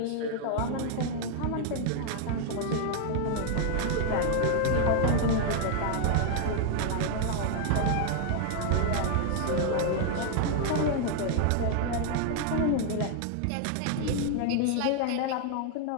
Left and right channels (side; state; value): both; different; correlation 0.00